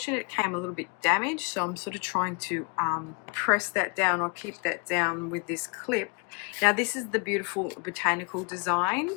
it came a little bit damaged, so I'm sort of trying to press that down or keep that down with this clip. Now, this is the beautiful botanical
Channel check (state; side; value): quieter; right; 33.5 dB